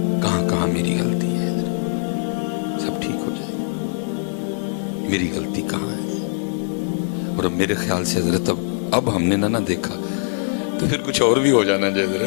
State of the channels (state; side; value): silent; right; digital silence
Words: کہاں کہاں میری غلطی ہے حضرت. سب ٹھیک ہو جائے. میری غلطی کہاں ہے؟ اور اب میرے خیال سے حضرت اب ہم نے نہ دیکھا تو پھر کچھ اور بھی ہو جانا چاہیے